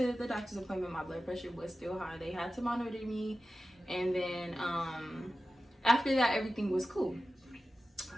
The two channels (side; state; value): both; normal; correlation 0.94